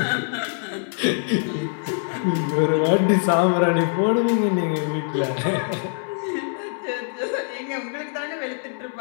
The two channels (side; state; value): right; silent; digital silence